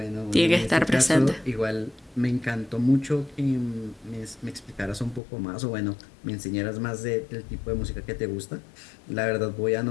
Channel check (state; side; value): drops out; right; at 5.2 s